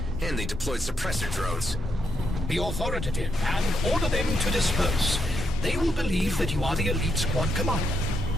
And they deployed suppressor drones. Be authoritative and order them to disperse. They will believe that you are the elite squad commander.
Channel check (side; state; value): both; normal; correlation 0.80